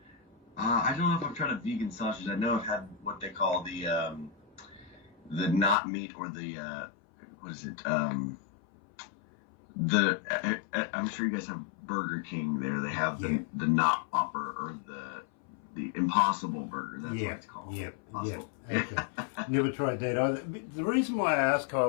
I don't know if I've tried a vegan sausage. I know I've had what they call the not meat, or the what is it? I'm sure you guys have Burger King there. They have the not Whopper, or the Impossible Burger. That's what it's called. Yeah. Okay. Never tried that either. The reason why I asked,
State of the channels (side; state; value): right; drops out; at 5.8 s